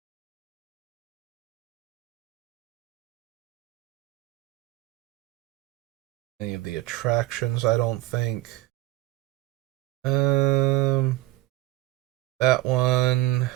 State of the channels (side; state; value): left; quieter; 17.9 dB